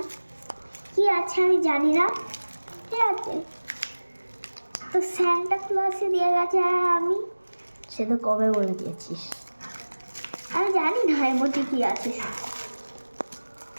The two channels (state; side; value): inverted; both; correlation -1.00